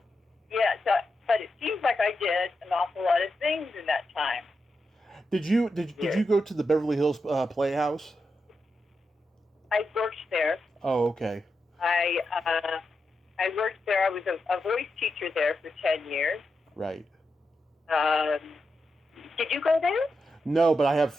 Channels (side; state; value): both; normal; correlation 0.87